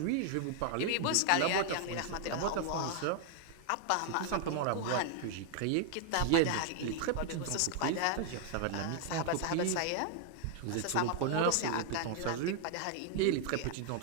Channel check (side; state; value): both; different; correlation 0.00